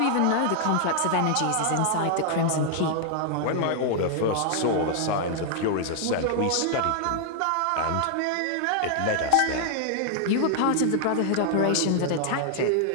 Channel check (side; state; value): both; different; correlation 0.00